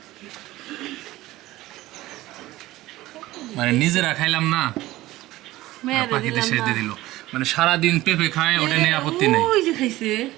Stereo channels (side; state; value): left; quieter; 17.2 dB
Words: মানে নিজেরা খাইলাম না আর পাখিতে শেষ দিয়ে দিল মানে সারাদিন পেঁপে খায় ওটা নিয়ে আপত্তি নেই ওই যে খাইছে